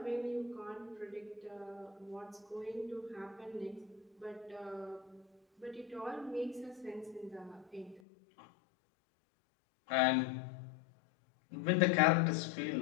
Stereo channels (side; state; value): right; drops out; at 8.0 s